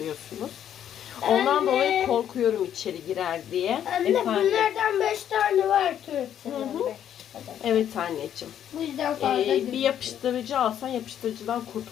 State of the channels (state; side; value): quieter; right; 10.0 dB